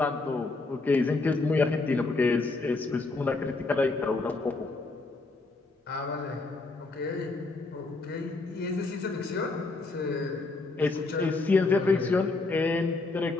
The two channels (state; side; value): quieter; right; 3.5 dB